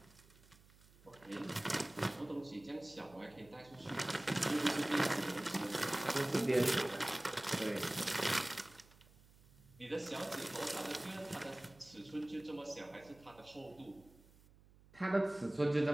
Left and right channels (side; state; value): right; noise; hum, 25 dB below the sound